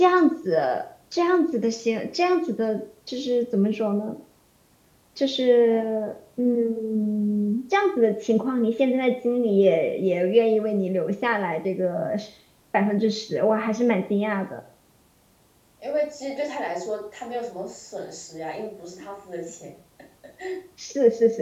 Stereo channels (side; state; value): both; identical; correlation 1.00